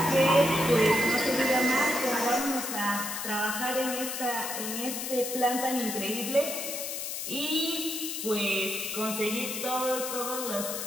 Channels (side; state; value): left; noise; hiss, 5 dB below the sound